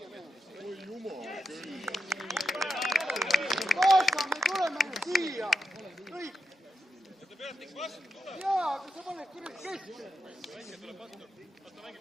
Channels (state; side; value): normal; both; correlation 0.86